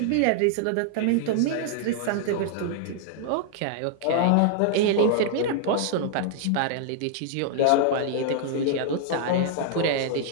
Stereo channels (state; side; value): different; both; correlation -0.01